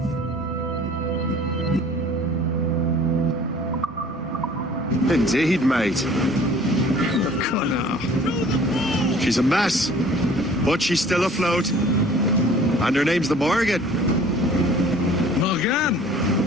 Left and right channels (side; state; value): both; normal; correlation 0.50